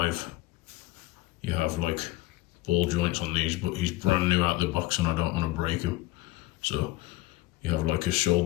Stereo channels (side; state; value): right; quieter; 19.1 dB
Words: You have like ball joints on these, but he's brand new out the box and I don't want to break him. So you have like a